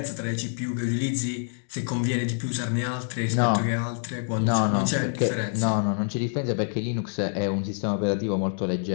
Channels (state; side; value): silent; right; digital silence